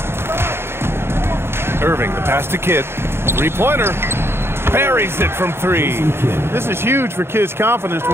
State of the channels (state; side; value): late; left; 0.12 ms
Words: Irving, the pass to Kidd. Three-pointer. Buries it from three. This is huge for Kidd's confidence.